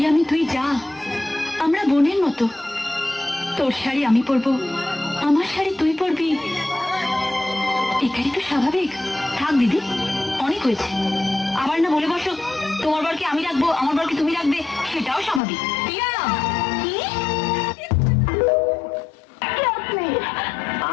তুই যা, আমরা বোনের মতো। তোর শাড়ি আমি পরবো, আমার শাড়ি তুই পরবি, এটাই তো স্বাভাবিক। থাক দিদি, অনেক হয়েছে। আবার না বলে বসো তোমার বরকে আমি রাখবো, আমার বরকে তুমি রাখবে, সেটাও স্বাভাবিক। টিয়া, কি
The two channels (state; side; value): drops out; right; at 15.4 s